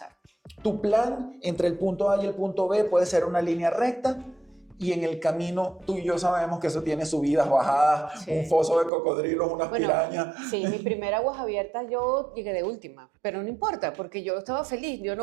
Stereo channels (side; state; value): left; drops out; at 8.9 s